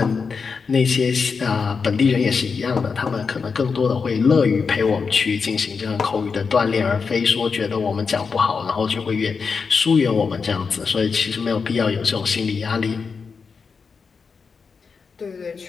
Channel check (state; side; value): quieter; right; 5.3 dB